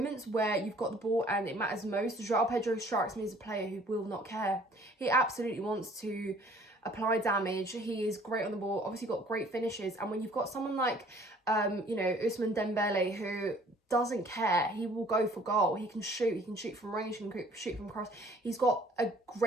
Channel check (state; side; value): normal; both; correlation 0.55